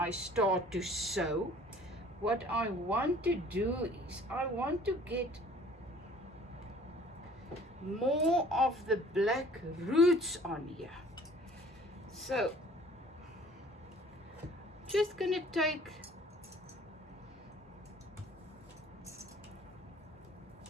start to sew. What I want to do is I want to get more of the black roots on here. So just gonna take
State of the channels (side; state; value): both; normal; correlation 0.52